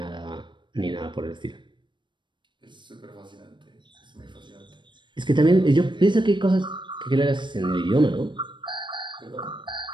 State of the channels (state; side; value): late; left; 0.23 ms